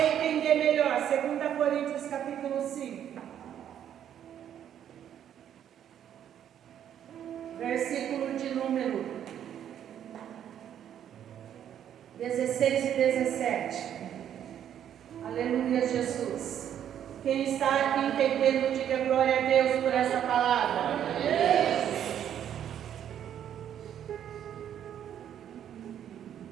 entender melhor, 2 Coríntios capítulo 5. Versículo de número 16 e 17. Aleluia, Jesus. Quem está aqui entendendo, diga glória a Deus por essa palavra.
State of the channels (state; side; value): quieter; left; 9.9 dB